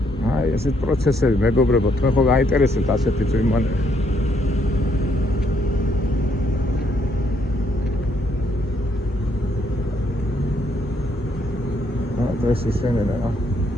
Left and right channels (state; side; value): normal; both; correlation 0.71